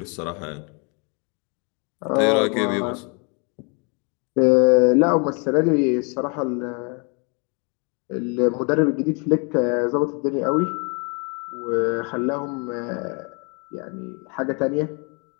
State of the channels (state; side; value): quieter; right; 34.7 dB